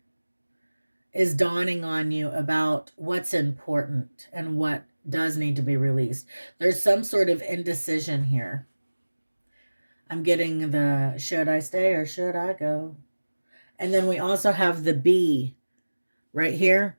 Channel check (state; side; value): inverted; both; correlation -1.00